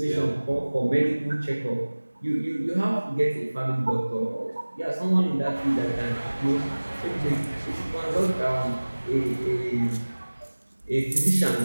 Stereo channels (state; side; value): inverted; both; correlation -1.00